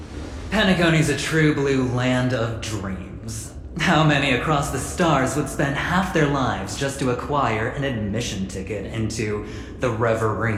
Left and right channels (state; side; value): identical; both; correlation 1.00